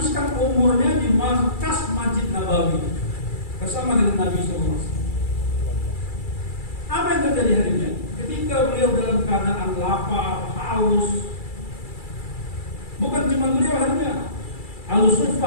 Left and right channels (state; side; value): late; right; 2.3 ms